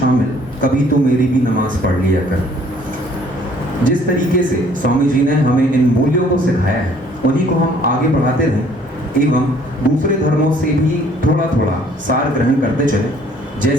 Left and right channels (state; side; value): normal; both; correlation 0.59